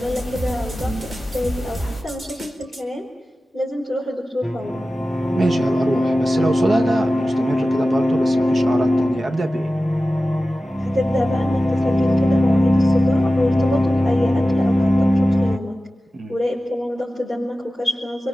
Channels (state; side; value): normal; both; correlation 0.95